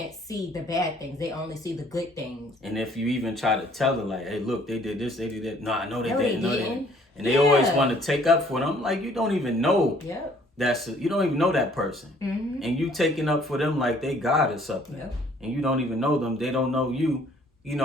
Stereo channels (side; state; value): both; normal; correlation 0.59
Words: see the bad things. They only see the good things. And if you even try to tell them, like, hey, look, they did this, they did that. No, I know they didn't. No, they didn't. And they always want to take up for them. Like, you don't even know. You don't even know that person. And you taking up for them like they God or something. And you don't even know them. They don't know you.